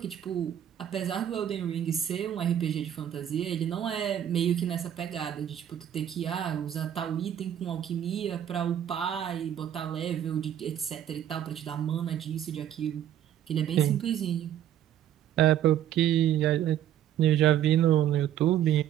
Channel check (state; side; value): quieter; left; 10.7 dB